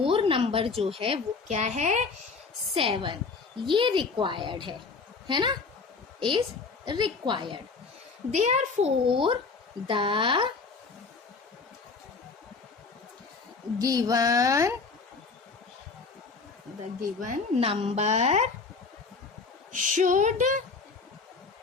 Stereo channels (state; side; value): quieter; right; 4.5 dB